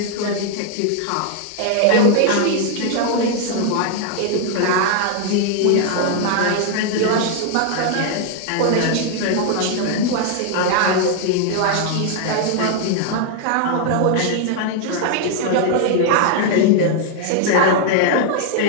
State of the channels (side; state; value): both; different; correlation 0.00